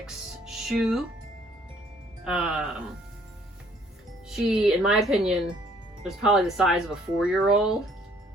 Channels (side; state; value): both; normal; correlation 0.61